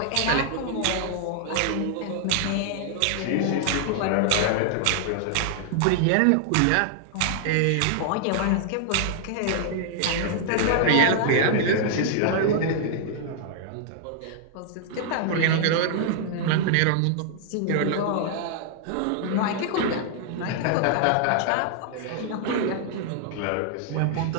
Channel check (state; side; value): different; both; correlation -0.01